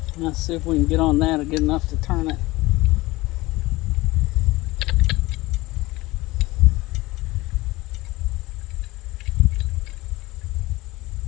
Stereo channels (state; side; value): quieter; right; 20.2 dB